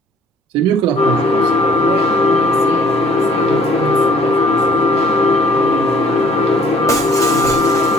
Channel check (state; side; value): normal; both; correlation 0.57